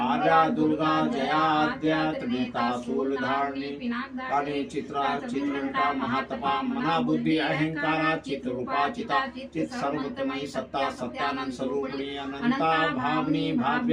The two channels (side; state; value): both; identical; correlation 1.00